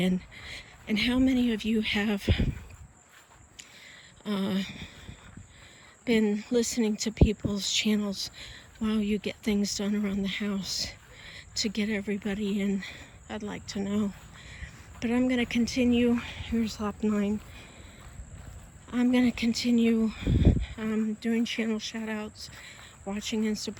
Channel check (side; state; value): both; identical; correlation 1.00